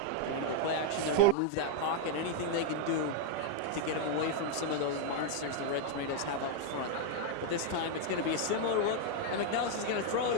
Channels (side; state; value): both; different; correlation 0.00